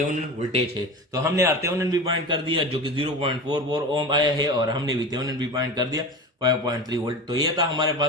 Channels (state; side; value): normal; both; correlation 0.29